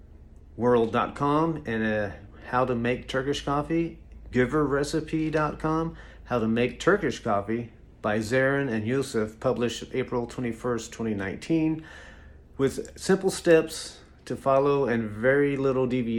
and how to make Turkish coffee, giverrecipe.com, how to make Turkish coffee by Zarin and Yusuf, published April 21st, 2019, with simple steps to follow and very little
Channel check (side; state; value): both; identical; correlation 1.00